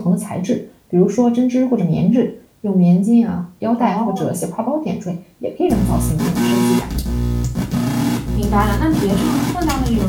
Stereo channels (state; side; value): identical; both; correlation 1.00